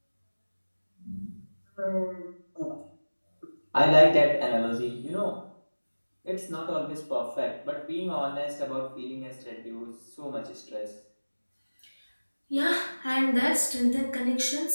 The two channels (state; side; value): inverted; both; correlation -1.00